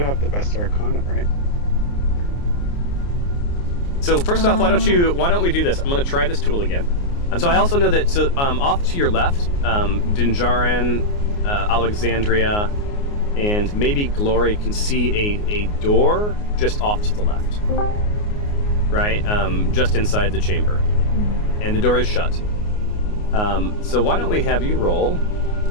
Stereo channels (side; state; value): right; late; 29 ms